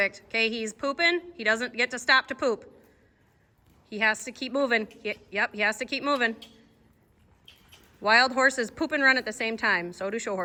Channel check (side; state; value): both; identical; correlation 1.00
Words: Okay, he's pooping. He doesn't get to stop to poop. He has to keep moving. Yep, he has to keep moving. Wild horses poop and run at the same time. So do show